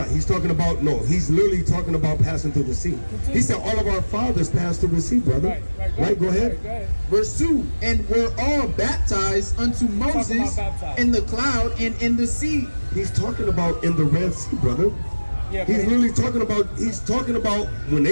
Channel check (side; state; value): both; inverted; correlation -1.00